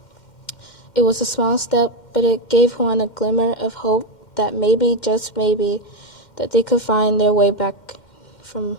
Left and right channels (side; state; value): right; late; 2.1 ms